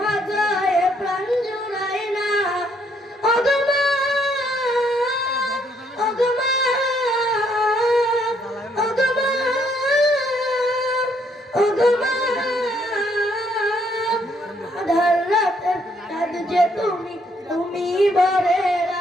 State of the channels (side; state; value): both; normal; correlation 0.70